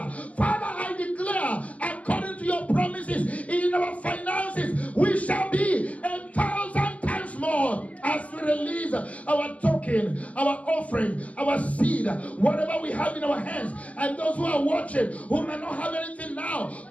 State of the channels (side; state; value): right; late; 0.066 ms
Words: Father, I declare, according to your promises in our finances, we shall be 1,000 times more as we release our token, our offering, our seed, whatever we have in our hands. And those who are watching, who may not have anything now,